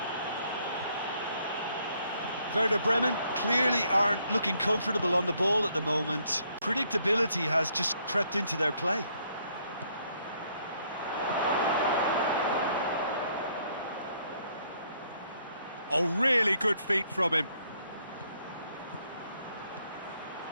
Werder Bremen clearly aren't looking comfortable on the ball at the moment. Predictability has just crept into their play. Oh, really good feet from him.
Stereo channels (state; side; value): inverted; both; correlation -0.69